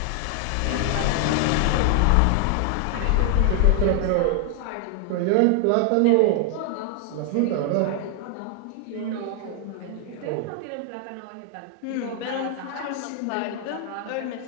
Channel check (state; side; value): different; both; correlation 0.00